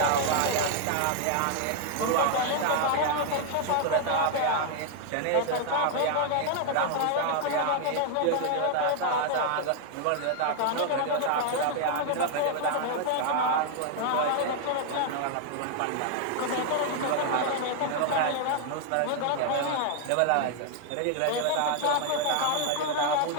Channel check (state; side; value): different; both; correlation 0.00